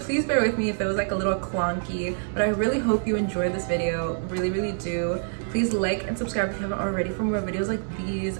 bear with me if it was like a little clunky, but I really hope you enjoyed this video. Really, really do. Please like and subscribe if you haven't already for more videos like these.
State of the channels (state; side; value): silent; left; 57 dB below the other